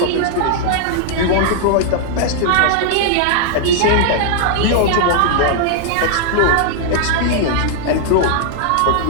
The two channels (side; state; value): both; different; correlation -0.01